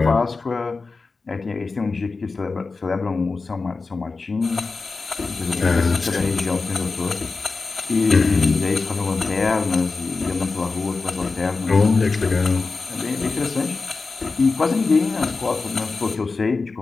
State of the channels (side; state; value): right; quieter; 4.1 dB